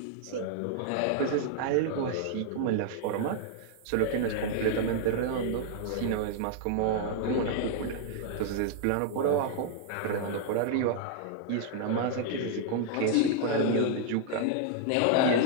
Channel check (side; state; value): both; different; correlation -0.01